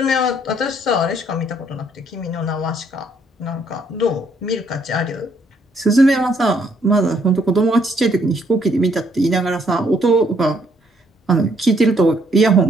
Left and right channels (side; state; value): both; normal; correlation 0.69